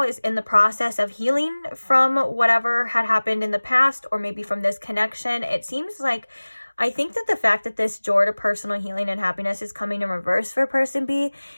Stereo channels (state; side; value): inverted; both; correlation -1.00